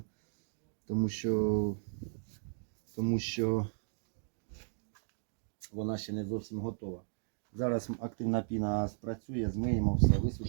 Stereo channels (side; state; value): left; silent; digital silence